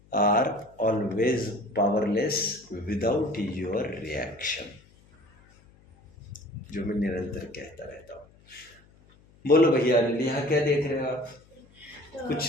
are always powerless without your reaction, जो मैं निरंतर कहता रहता हूँ। बोलो भैया, यहाँ क्या देख रहे हो आप?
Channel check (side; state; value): left; noise; hum, 28 dB below the sound